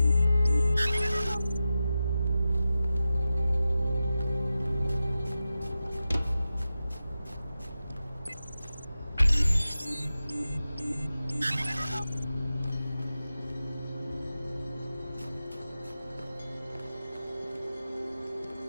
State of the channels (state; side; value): inverted; both; correlation -0.92